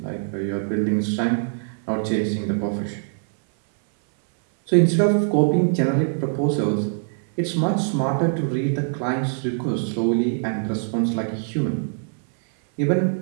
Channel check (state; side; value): silent; left; 61 dB below the other